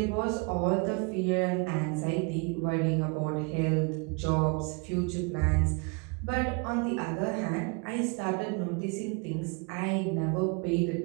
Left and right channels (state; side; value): quieter; left; 31.7 dB